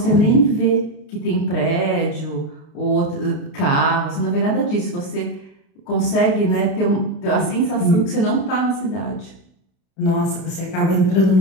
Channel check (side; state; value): right; late; 32 ms